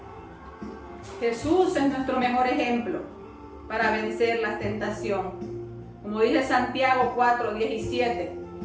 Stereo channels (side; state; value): both; identical; correlation 1.00